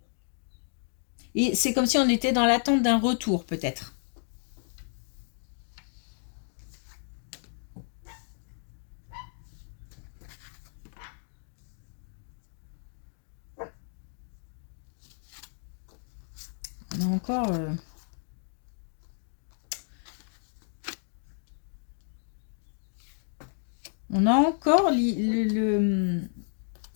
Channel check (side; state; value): right; silent; digital silence